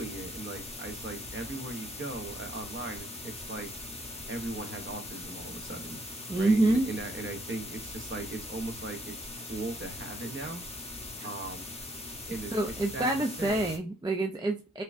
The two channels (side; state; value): both; normal; correlation 0.68